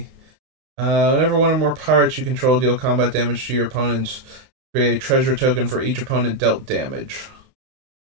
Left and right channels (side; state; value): left; late; 30 ms